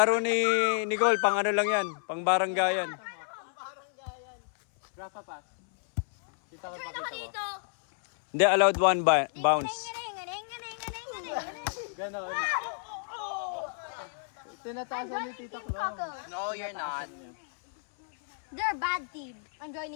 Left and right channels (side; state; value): right; silent; 58 dB below the other